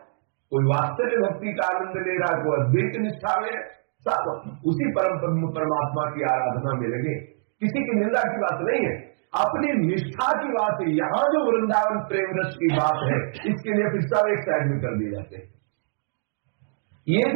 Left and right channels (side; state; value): left; silent; digital silence